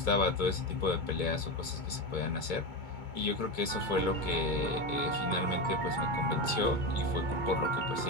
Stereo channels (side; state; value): right; late; 2.2 ms